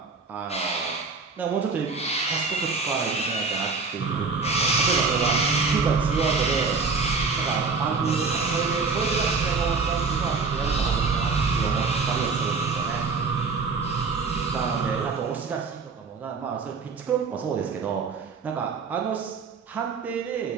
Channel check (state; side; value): quieter; left; 4.6 dB